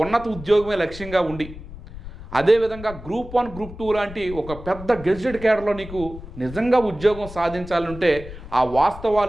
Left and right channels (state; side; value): noise; left; rumble, 14 dB below the sound